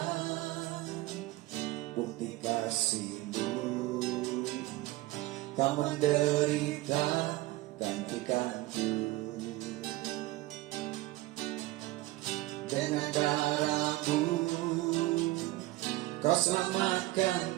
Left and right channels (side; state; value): left; quieter; 18.9 dB